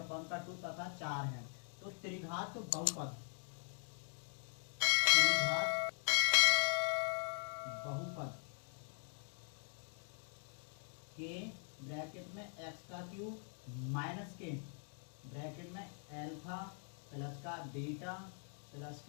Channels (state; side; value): silent; right; 50 dB below the other